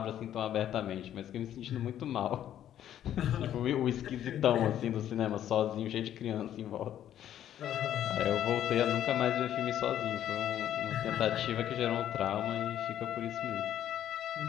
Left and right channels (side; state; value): right; quieter; 11.1 dB